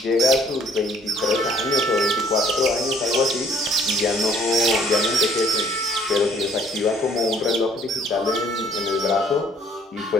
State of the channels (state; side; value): normal; both; correlation 0.59